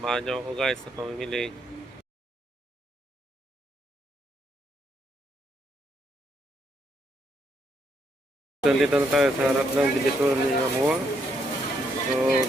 nyo ako guys sa pamimili. Dito na tayo sa harap ng Divisoria Mall. So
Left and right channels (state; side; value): normal; both; correlation 0.75